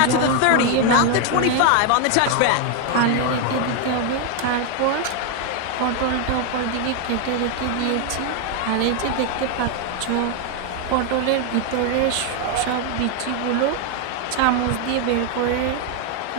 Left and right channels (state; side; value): different; both; correlation 0.01